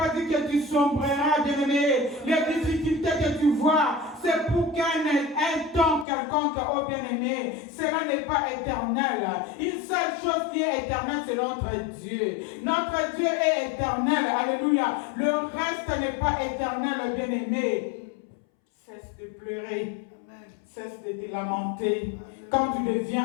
dit que tu sombreras, bien-aimé. Les difficultés que tu vois, c'est pour qu'un temps quelconque, oh bien-aimé, cela n'est pas éternel. Une seule chose qui est éternelle, c'est notre Dieu. Notre Dieu est éternel. Alléluia. Le reste n'est pas éternel, bien-aimé. Cesse de pleurer. Cesse de te lamenter. Quand tu deviens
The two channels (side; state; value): right; drops out; at 6.1 s